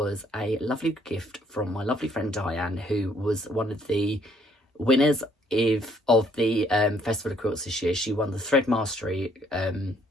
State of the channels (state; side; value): normal; both; correlation 0.66